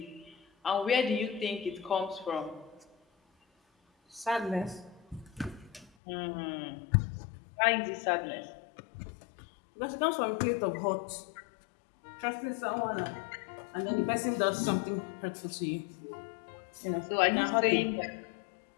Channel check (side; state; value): right; drops out; at 5.9 s